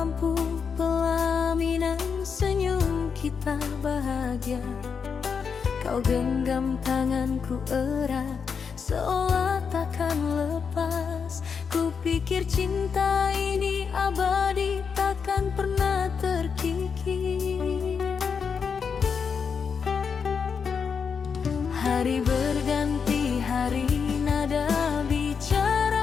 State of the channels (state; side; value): quieter; right; 6.1 dB